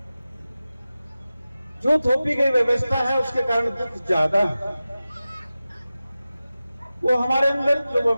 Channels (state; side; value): inverted; both; correlation -0.95